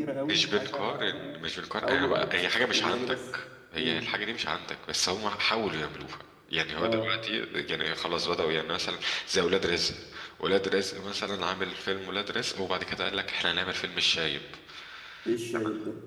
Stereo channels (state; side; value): identical; both; correlation 1.00